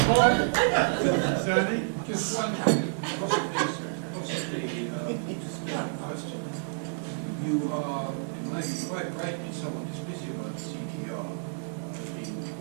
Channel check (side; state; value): left; silent; 58 dB below the other